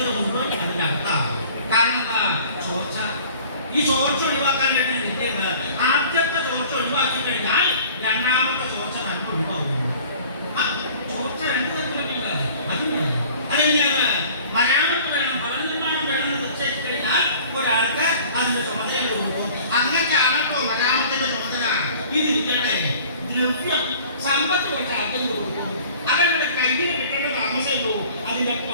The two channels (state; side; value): inverted; both; correlation -0.48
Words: മുഴുവൻ അതിന്റെ അർത്ഥമാണ്. കാരണം എന്താ? ചോർച്ച. ഈ ചോർച്ച ഒഴിവാക്കാൻ വേണ്ടി വിദ്യയുണ്ട്. ആദ്യത്തെ ചോർച്ച ഒഴിവാക്കി കഴിഞ്ഞാൽ രണ്ടാമത്തെ ചോർച്ച തന്നെ ഒഴിവാകുന്നു. ആ ചോർച്ച രണ്ട് തരത്തിലുള്ള അതുണ്ട്. അതെങ്ങനെയാണ്? മരാമത്ത് വേണം, ഭവന നിർമ്മാണം വേണമെന്ന് നിശ്ചയിച്ചു കഴിഞ്ഞാൽ ഒരാൾക്ക് അതിന്റെ ചുമതല കൊടുക്കും. അങ്ങനെയാണല്ലോ മരാമത്തിന്റെ ചുമതല. ഇതിരിക്കട്ടെ, ദ്രവ്യം സമ്പത്ത് കുറച്ച് ആദ്യം കൊടുക്കും. അവരുടെ കയ്യിൽ കിട്ടേണ്ട താമസമല്ലോ അതിന്റെ